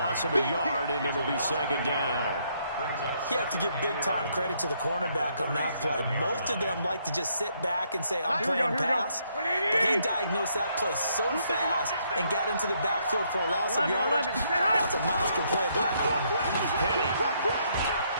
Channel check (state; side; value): inverted; both; correlation -0.72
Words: of a yard, and it'll be second down. You have to give big-time credit to the cornerback on that play. Most of them like to just sit back and say, I'm playing pass. But he diagnosed that play so fast and got into the backfield for a loss of yardage. That's a monster play by a corner. Penny.